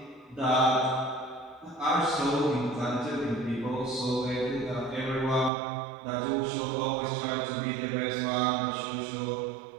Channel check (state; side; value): drops out; left; at 5.5 s